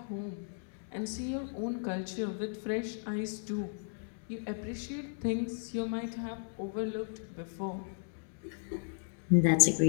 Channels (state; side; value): silent; right; digital silence